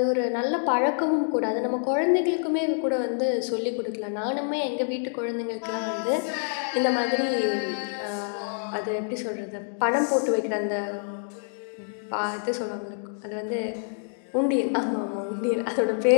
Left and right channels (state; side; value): silent; right; digital silence